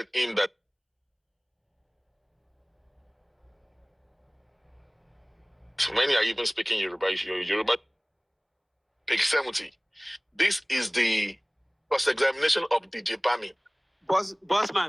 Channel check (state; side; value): identical; both; correlation 1.00